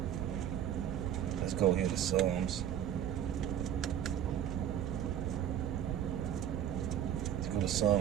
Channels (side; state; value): left; quieter; 10.1 dB